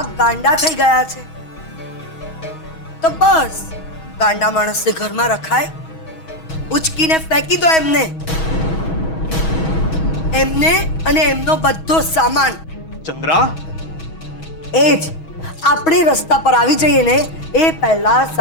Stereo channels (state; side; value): late; right; 6.2 ms